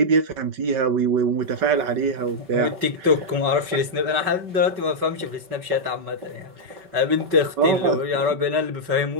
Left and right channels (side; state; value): left; late; 5.2 ms